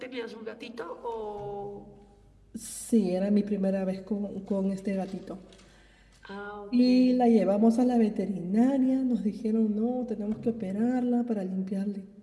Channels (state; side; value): identical; both; correlation 1.00